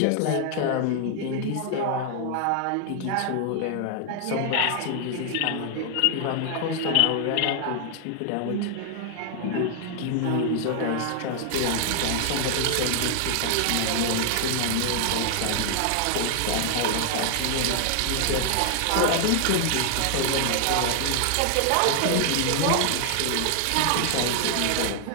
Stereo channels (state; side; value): different; both; correlation 0.00